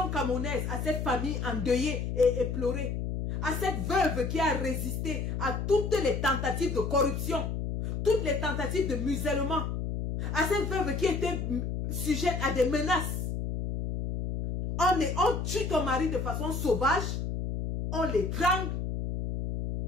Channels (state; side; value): noise; left; hum, 2 dB below the sound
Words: camerounaise, à cette famille endeuillée et éplorée, à cette veuve qui a résisté à toutes les tentatives de corruption, toutes les tentatives de musellement, à cette veuve qui était sujette à des menaces. On tue ton mari de façon sauvage, on l'étrangle,